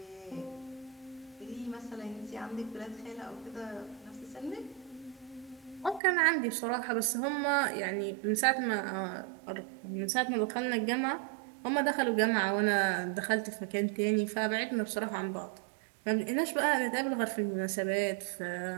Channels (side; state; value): left; drops out; at 6.0 s